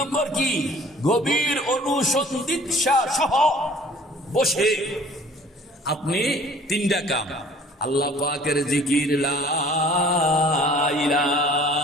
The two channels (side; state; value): both; normal; correlation 0.52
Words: কি? গভীর অনুসন্ধিৎসা সহ বসে। আপনি 3টা কাম, আল্লাহ পাকের জিকির, লা